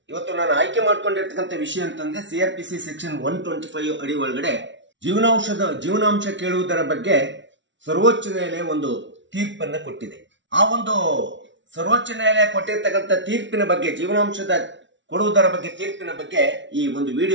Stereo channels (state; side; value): late; left; 0.54 ms